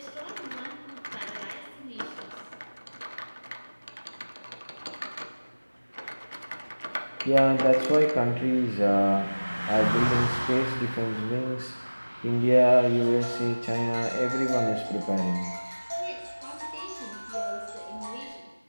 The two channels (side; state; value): both; inverted; correlation -1.00